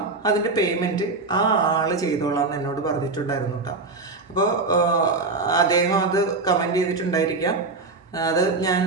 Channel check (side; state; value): left; quieter; 3.7 dB